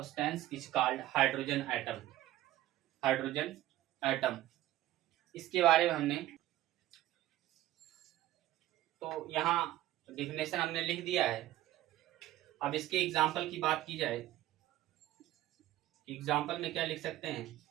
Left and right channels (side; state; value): left; quieter; 14.7 dB